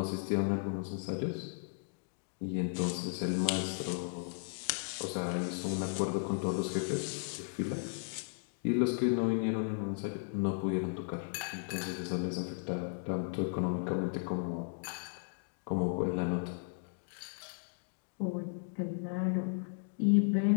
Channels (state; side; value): silent; right; digital silence